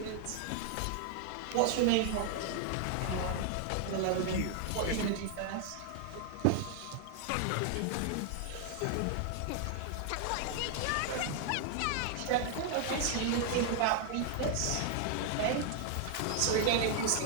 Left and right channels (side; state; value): both; different; correlation 0.00